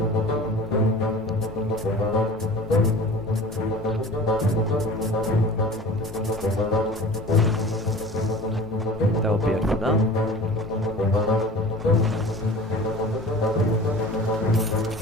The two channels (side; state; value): both; normal; correlation 0.40